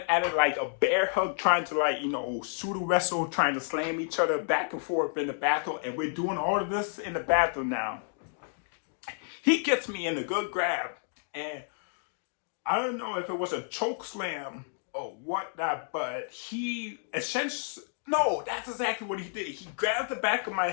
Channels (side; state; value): right; silent; digital silence